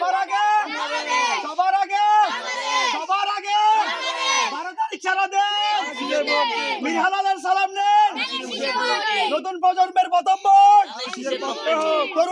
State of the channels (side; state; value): both; identical; correlation 1.00